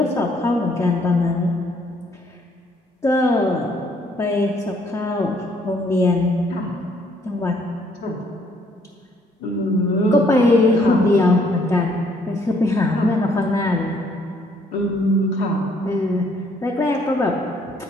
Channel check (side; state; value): both; normal; correlation 0.66